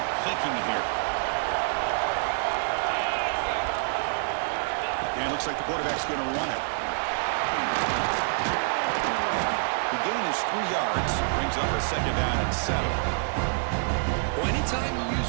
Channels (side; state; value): left; silent; digital silence